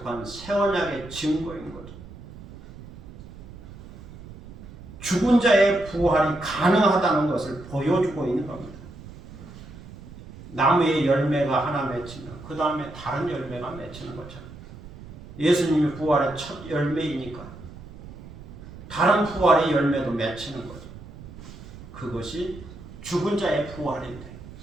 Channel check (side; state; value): right; noise; rumble, 16 dB below the sound